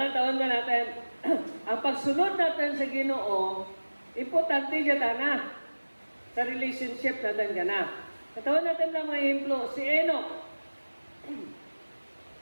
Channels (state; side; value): inverted; both; correlation -1.00